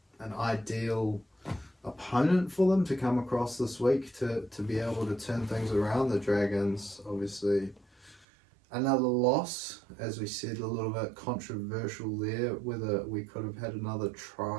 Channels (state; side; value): drops out; left; at 8.2 s